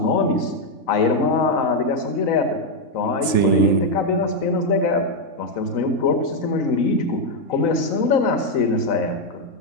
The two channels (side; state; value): right; late; 3.3 ms